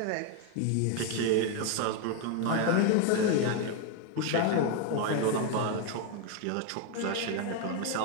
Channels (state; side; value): different; both; correlation 0.01